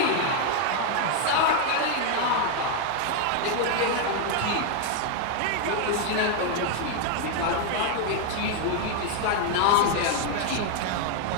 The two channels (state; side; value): different; both; correlation 0.01